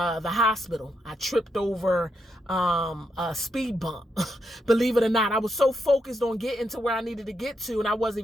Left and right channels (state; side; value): normal; both; correlation 0.81